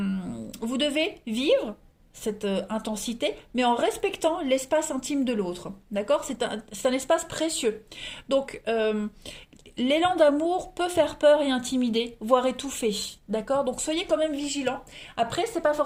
devez vivre cette intensité, mais en respectant l'espace intime de l'autre. D'accord ? C'est un espace précieux. Donc, l'élan d'amour peut faire peur et intimider, voire étouffer, d'accord? Donc soyez quand même vigilants. Après, c'est pas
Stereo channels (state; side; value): identical; both; correlation 1.00